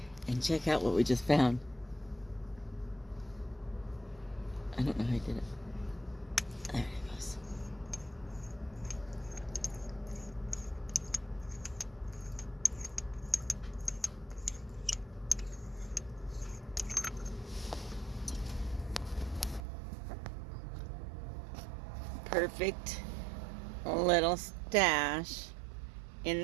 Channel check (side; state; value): left; drops out; at 19.6 s